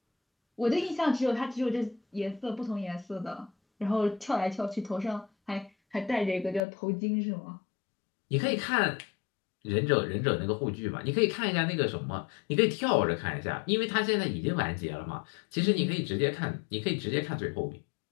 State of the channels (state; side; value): drops out; right; at 6.6 s